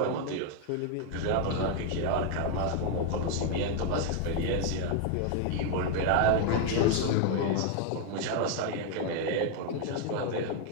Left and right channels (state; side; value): different; both; correlation 0.01